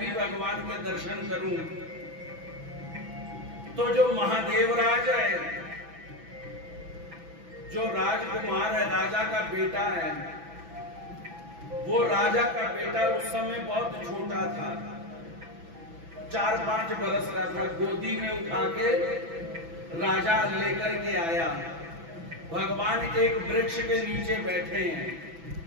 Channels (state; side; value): late; left; 6.0 ms